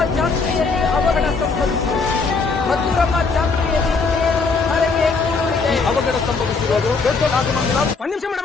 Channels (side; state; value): right; quieter; 4.5 dB